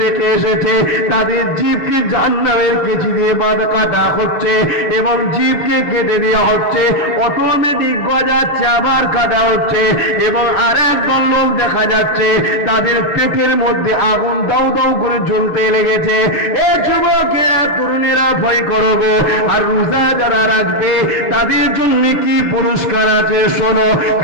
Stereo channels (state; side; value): late; right; 7.0 ms